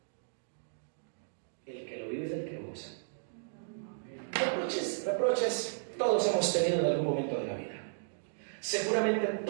El que lo vive es el que lo usa. Reproches, todos hemos tenido en algún momento de la vida. Seguramente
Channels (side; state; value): left; silent; digital silence